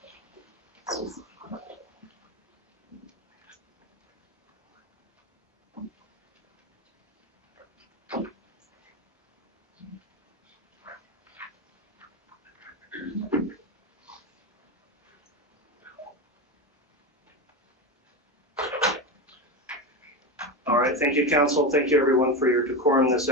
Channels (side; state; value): both; normal; correlation 0.17